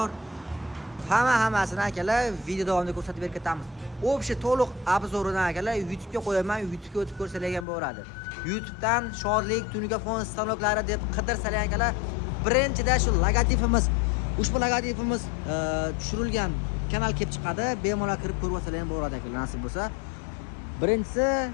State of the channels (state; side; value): drops out; right; at 7.7 s